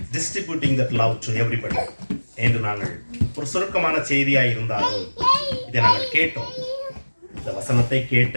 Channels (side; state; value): both; inverted; correlation -1.00